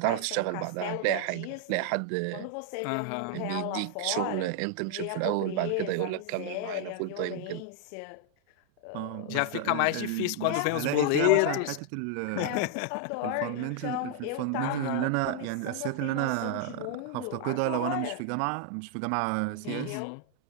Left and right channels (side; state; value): both; different; correlation 0.00